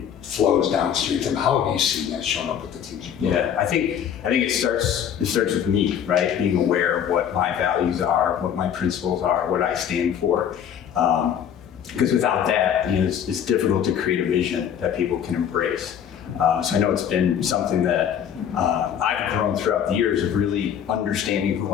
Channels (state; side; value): quieter; right; 8.9 dB